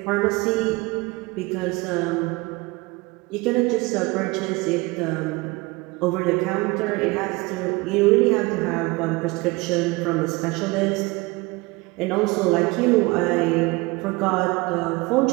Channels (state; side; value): quieter; left; 24.3 dB